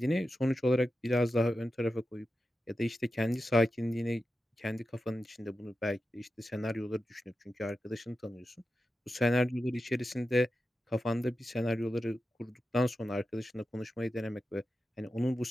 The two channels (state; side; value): normal; both; correlation 0.91